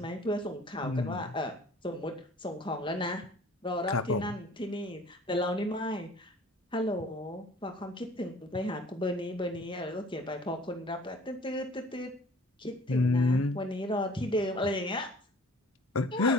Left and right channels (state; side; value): normal; both; correlation 0.50